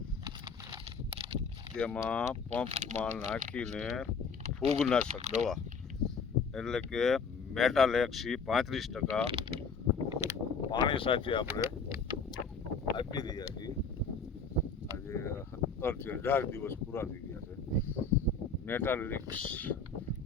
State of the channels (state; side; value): quieter; right; 4.9 dB